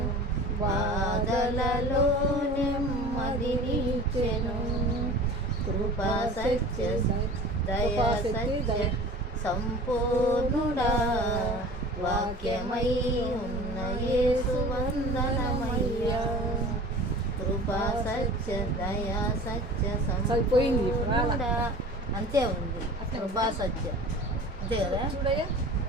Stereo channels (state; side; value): normal; both; correlation 0.40